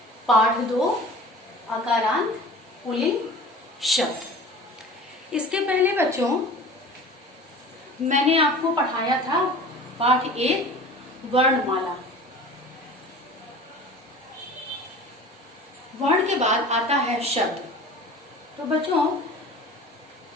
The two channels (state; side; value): normal; both; correlation 0.40